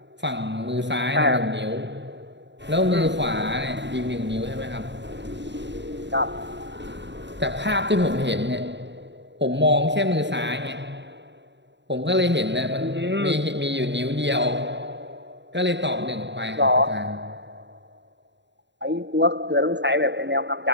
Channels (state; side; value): late; left; 0.52 ms